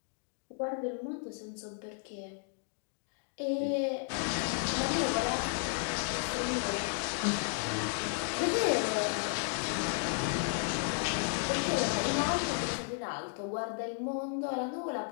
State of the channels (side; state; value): right; silent; 55 dB below the other